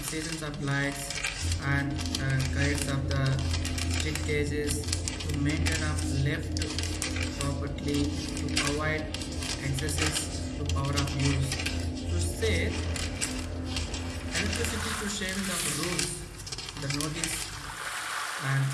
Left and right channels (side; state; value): both; identical; correlation 1.00